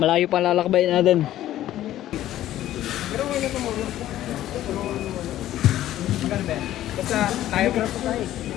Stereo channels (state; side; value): quieter; right; 13.4 dB